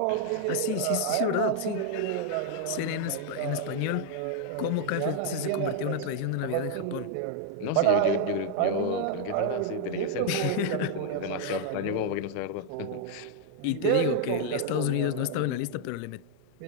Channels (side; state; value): both; different; correlation 0.00